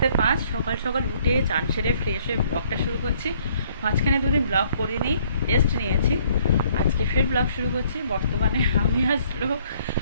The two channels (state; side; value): inverted; both; correlation -0.63